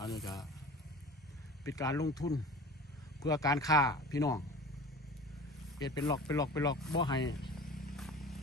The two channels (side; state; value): both; normal; correlation 0.39